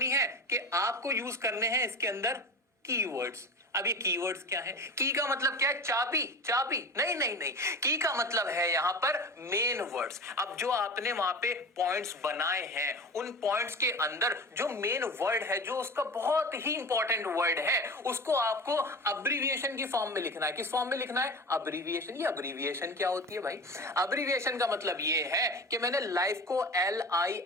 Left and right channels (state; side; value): normal; both; correlation 0.32